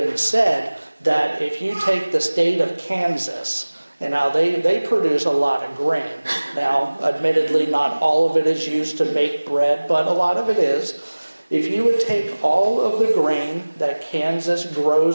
said that if you take the state of Kansas, and now they produce a lot of grain. Now, admittedly, not all of it is used to make bread, but a lot of it is. If you would take all of the grain that Kansas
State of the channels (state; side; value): inverted; both; correlation -1.00